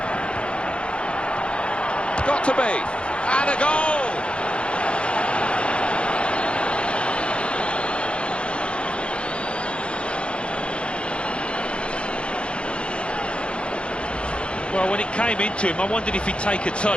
Got to be. And a goal! Well, when it came into him, I wondered if he'd take a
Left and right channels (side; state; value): right; late; 0.058 ms